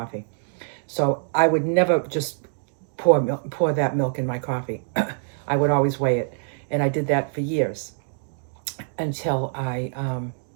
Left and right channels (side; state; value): left; silent; digital silence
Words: So I would never just pour that milk in my coffee. I would always weigh it. And I did that for years until I